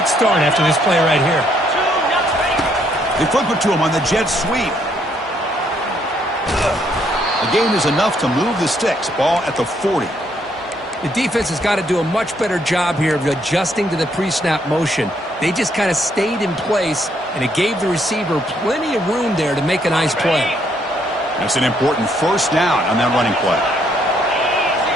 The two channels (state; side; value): normal; both; correlation 0.71